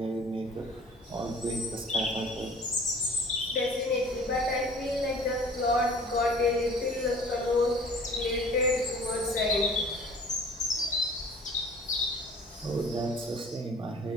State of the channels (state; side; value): normal; both; correlation 0.47